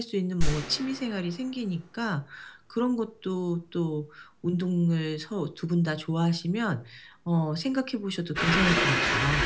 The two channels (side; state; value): both; identical; correlation 1.00